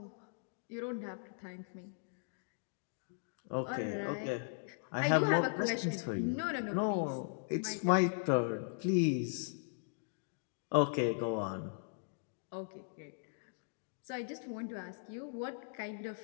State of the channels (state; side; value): silent; right; digital silence